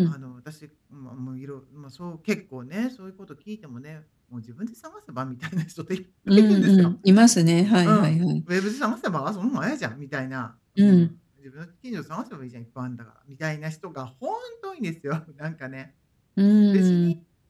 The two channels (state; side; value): identical; both; correlation 1.00